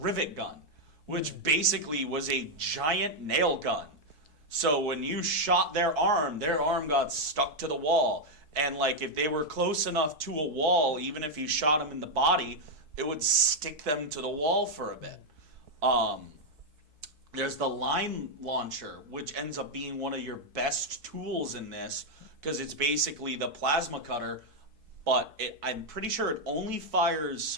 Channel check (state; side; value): late; left; 4.6 ms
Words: gun, which basically was a giant nail gun. So when you shot their arm got stuck to the wall. And, like, if they were close enough to a wall, even if you shot them in the body, it would stick them to the wall for a bit. There's the line launcher, which ends up being one of your best tools in this, because it's basically the plasma cutter, but I'm pretty sure it only fires